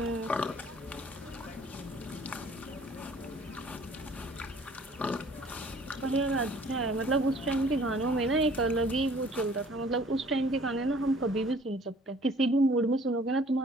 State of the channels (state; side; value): normal; both; correlation 0.54